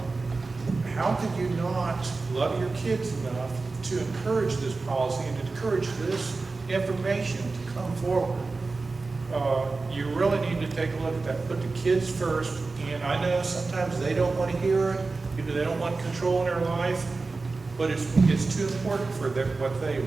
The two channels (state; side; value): quieter; left; 3.8 dB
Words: How could you not love your kids enough to encourage this policy and encourage this information to come forward? You really need to take a look at that. Put the kids first, and I know sometimes they don't want to hear it, they don't want control in their life, but it's too important for what they